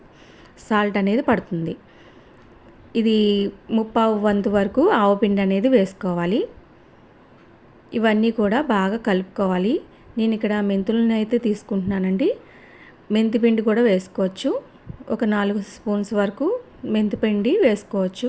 సాల్ట్ అనేది పడుతుంది. ఇది ముప్పావు వంతు వరకు ఆవపిండి అనేది వేసుకోవాలి. ఇవన్నీ కూడా బాగా కలుపుకోవాలి. నేను ఇక్కడ మెంతులను అయితే తీసుకుంటున్నానండి. మెంతిపిండి కూడా వేసుకోవచ్చు. ఒక 4 స్పూన్స్ వరకు మెంతిపిండి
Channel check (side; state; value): both; identical; correlation 1.00